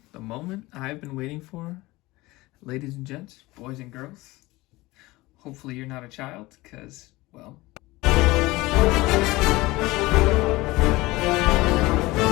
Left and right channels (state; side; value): quieter; right; 20.4 dB